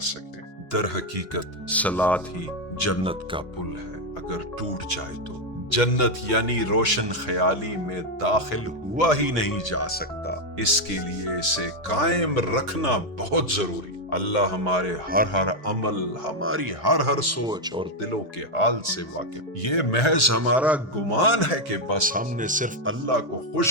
در حقیقت صلات ہی جنت کا پل ہے، اگر ٹوٹ جائے تو جنت یعنی روشن خیالی میں داخل ہوا ہی نہیں جا سکتا۔ اس کے لیے اسے قائم رکھنا بہت ضروری۔ اللہ ہمارے ہر عمل، ہماری ہر سوچ اور دلوں کے حال سے واقف۔ یہ محض ہمارا گمان ہے کہ بس ہم نے صرف اللہ کو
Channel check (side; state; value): both; normal; correlation 0.04